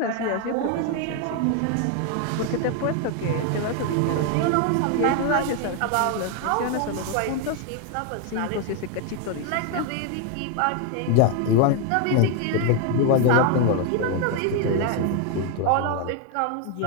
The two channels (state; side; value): different; both; correlation 0.01